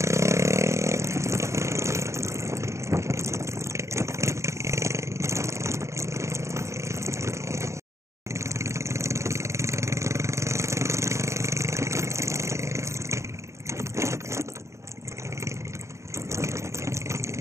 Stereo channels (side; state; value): left; late; 0.14 ms